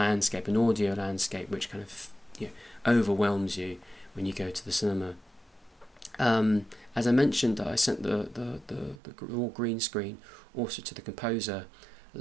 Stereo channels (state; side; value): drops out; left; at 9.0 s